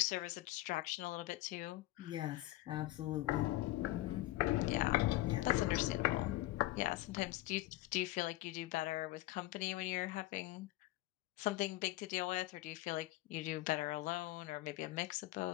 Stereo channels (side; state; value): right; quieter; 17.5 dB